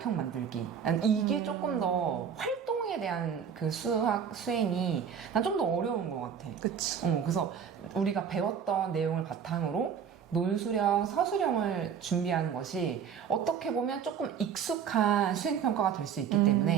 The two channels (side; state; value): left; quieter; 7.6 dB